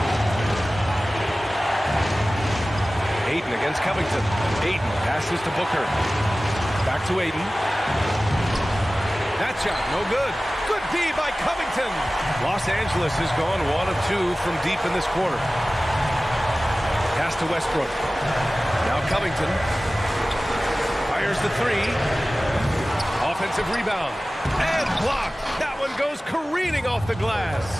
Ayton against Covington. Ayton passes to Booker. Back to Ayton. That shot, no good. Good D by Covington. Los Angeles has gone 1 of 2 from deep in this quarter. Pass to Westbrook. Now Covington. Fires the 3. Offensive rebound. And blocked. That one goes careening off the glass.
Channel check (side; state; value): both; normal; correlation 0.97